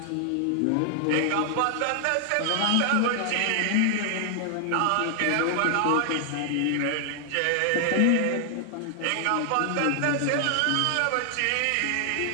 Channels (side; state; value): both; different; correlation 0.00